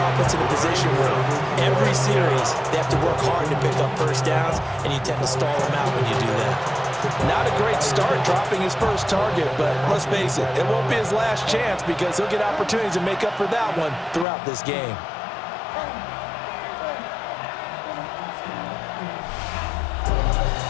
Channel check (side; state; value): right; drops out; at 14.2 s